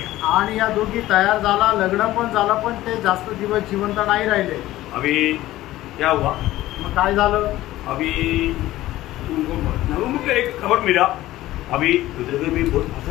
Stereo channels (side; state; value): right; quieter; 15.8 dB